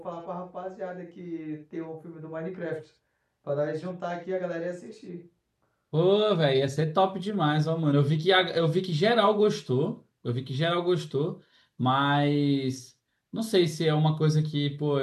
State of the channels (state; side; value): identical; both; correlation 1.00